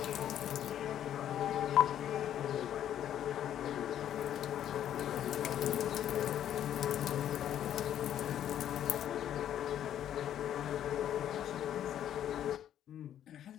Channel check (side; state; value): right; quieter; 10.6 dB